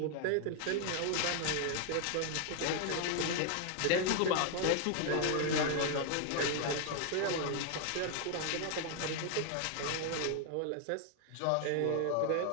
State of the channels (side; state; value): both; different; correlation 0.00